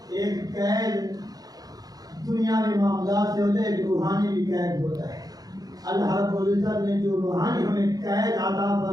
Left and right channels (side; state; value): left; late; 0.18 ms